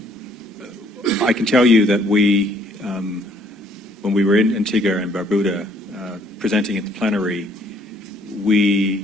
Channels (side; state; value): both; normal; correlation 0.63